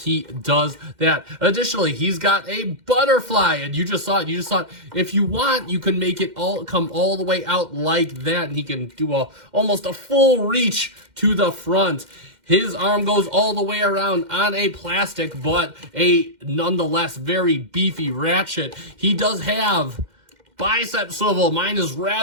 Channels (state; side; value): late; left; 2.1 ms